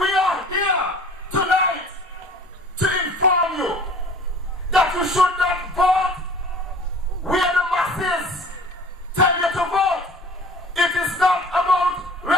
are here tonight to inform you that you should not vote where the masses tell you to vote. It is not about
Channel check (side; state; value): both; normal; correlation 0.46